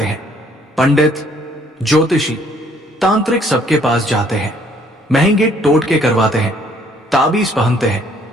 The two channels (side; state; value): both; normal; correlation 0.63